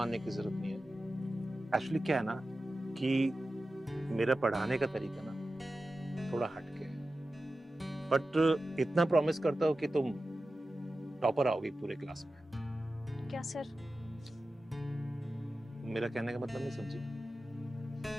की जरूरत नहीं है। एक्चुअली क्या है ना कि मेरा पढ़ाने का तरीका ना थोड़ा हटके है, बट इतना प्रॉमिस करता हूँ कि तुम टॉपर आओगी पूरे क्लास में। क्या सर? मेरा कहने का मतलब नहीं समझी?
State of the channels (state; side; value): normal; both; correlation 0.94